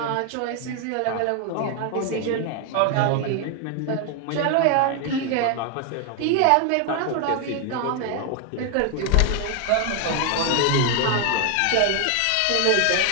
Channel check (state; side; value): different; both; correlation 0.01